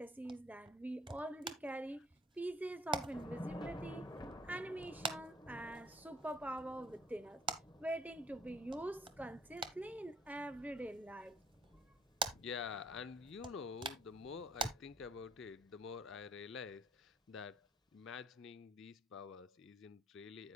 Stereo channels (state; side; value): normal; both; correlation 0.61